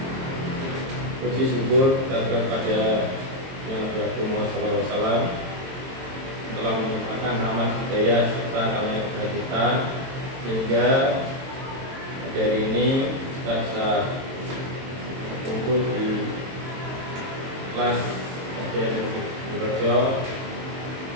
puji syukur kepada Nabi Muhammad SAW telah menyempurnakan rahmat hidayah serta karunia kita sehingga hari ini kita bisa kumpul di kelas SDN Purworejo.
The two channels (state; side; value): late; left; 22 ms